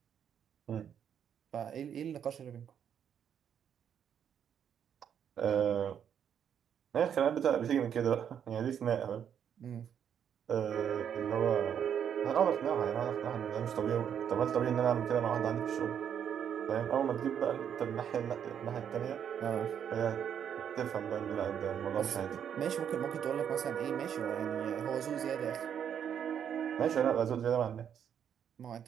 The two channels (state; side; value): quieter; left; 8.6 dB